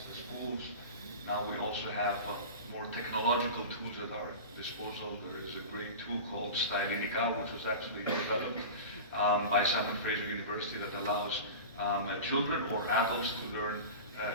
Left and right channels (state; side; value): inverted; both; correlation -0.30